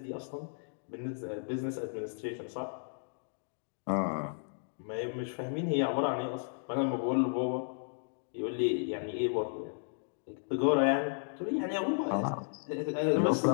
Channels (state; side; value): silent; right; digital silence